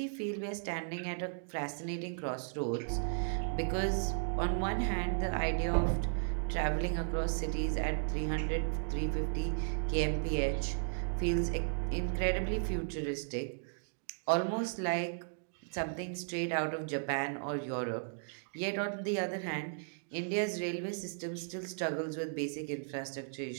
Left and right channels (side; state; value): left; silent; digital silence